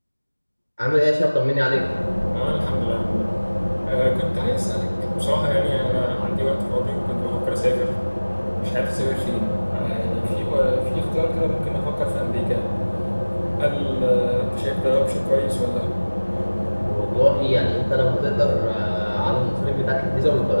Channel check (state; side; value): inverted; both; correlation -1.00